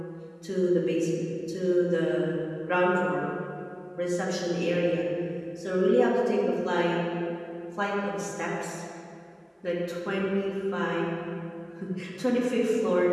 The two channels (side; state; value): both; identical; correlation 1.00